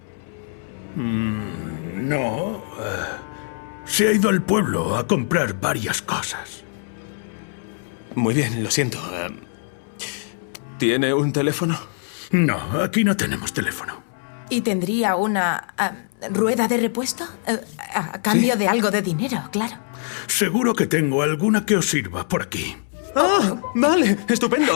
No. Se ha ido al pueblo a comprar varias cosas. Muy bien, lo siento. ¿Tiene un teléfono? No, aquí no tenemos teléfono. ¿Y tendría una rueda de repuesto? A cambio de algo de dinero, claro. Seguro que tengo alguna que os sirva por aquí. ¡Ah! Vale,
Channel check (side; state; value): right; silent; 64 dB below the other